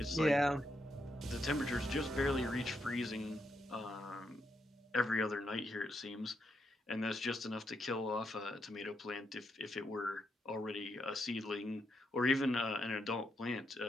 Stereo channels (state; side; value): normal; both; correlation 0.81